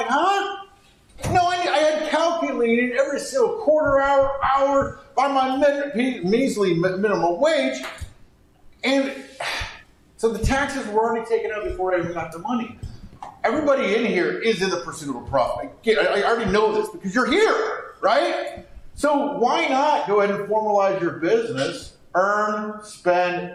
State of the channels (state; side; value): identical; both; correlation 1.00